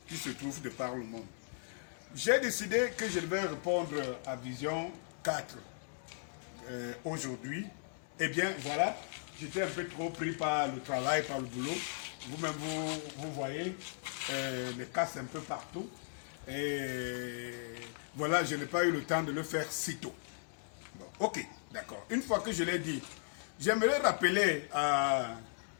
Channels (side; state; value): right; silent; digital silence